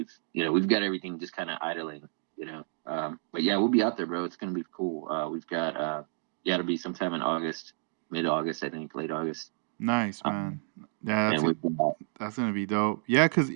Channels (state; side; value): silent; left; digital silence